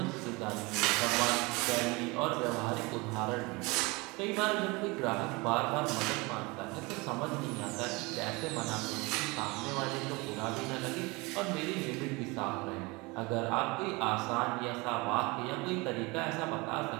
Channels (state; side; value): quieter; left; 25.4 dB